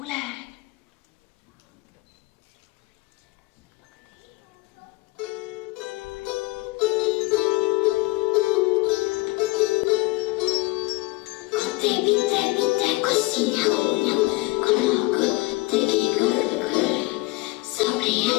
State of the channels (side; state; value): right; quieter; 22.7 dB